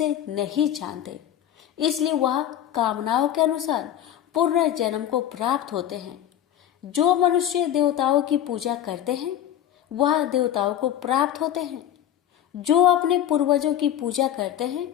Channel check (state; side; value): quieter; right; 11.1 dB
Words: नहीं जानते, इसलिए वह कामनाओं के अनुसार पुनर्जन्म को प्राप्त होते हैं। जो मनुष्य देवताओं की पूजा करते हैं वह देवताओं को प्राप्त होते हैं। जो अपने पूर्वजों की पूजा करते हैं